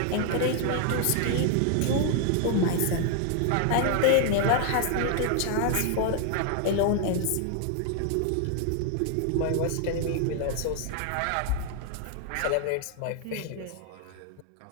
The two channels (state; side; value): different; both; correlation 0.00